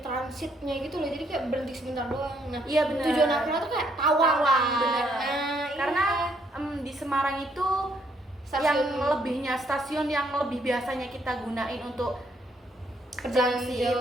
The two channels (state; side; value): normal; both; correlation 0.70